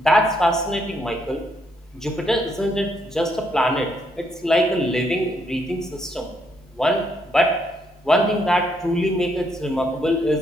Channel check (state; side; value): normal; both; correlation 0.74